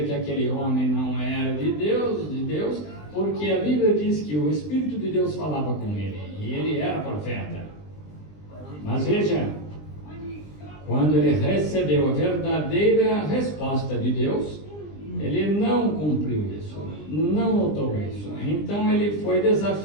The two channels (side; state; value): right; late; 20 ms